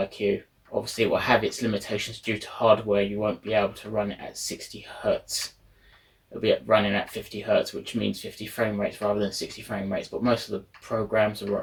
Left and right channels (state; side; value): identical; both; correlation 1.00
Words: Obviously, it will have its limitations due to hardware. You won't be able to run it at 60 Hertz. It'll be running at 50 Hertz, which means 50 frame rates rather than 60 frame rates. But most of the programs